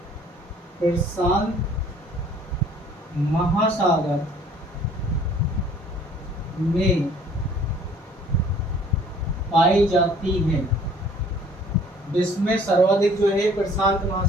प्रशांत महासागर में पाई जाती है। विश्व में सर्वाधिक जो है प्रशांत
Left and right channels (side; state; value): both; normal; correlation 0.55